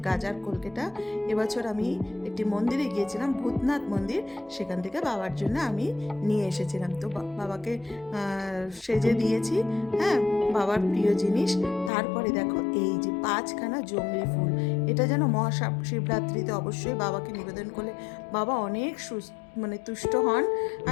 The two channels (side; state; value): right; drops out; at 11.9 s